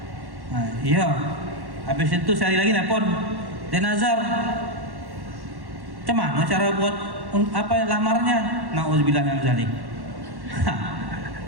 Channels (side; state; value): left; late; 1.1 ms